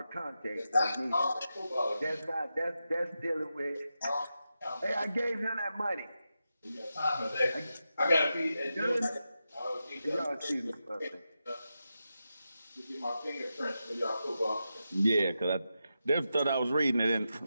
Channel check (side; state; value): both; inverted; correlation -0.89